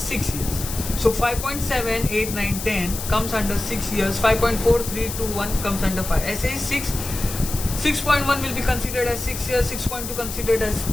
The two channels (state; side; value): noise; left; hiss, 8 dB below the sound